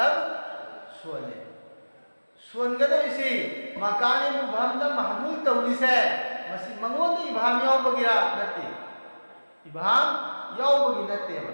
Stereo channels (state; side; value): inverted; both; correlation -1.00